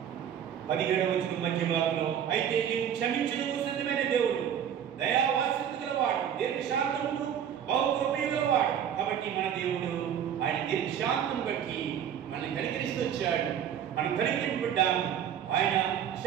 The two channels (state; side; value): quieter; left; 9.1 dB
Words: 17వ వచనం మధ్య భాగంలో, అయితే నీవు క్షమించుటకు సిద్ధమైన దేవుడు, దయావాత్సల్యత గలవాడు, దీర్ఘశాంతమును బహుకృపయు గలవాడు. కాబట్టి మన దేవుడు ఆయన దీర్ఘశాంతం బట్టి మనల్ని కనికరిస్తూ వచ్చాడు. మనం కనికరింపడ్డాము. ఆయన